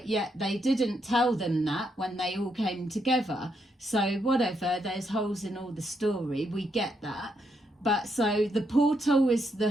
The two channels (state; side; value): normal; both; correlation 0.78